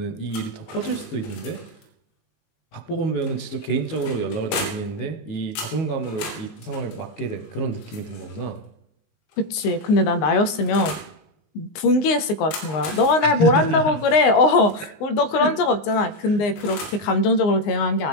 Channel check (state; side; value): late; right; 19 ms